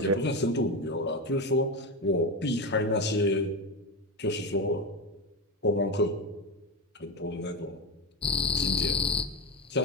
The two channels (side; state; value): both; normal; correlation 0.16